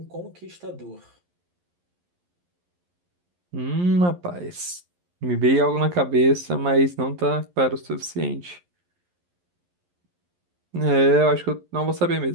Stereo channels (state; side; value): late; left; 11 ms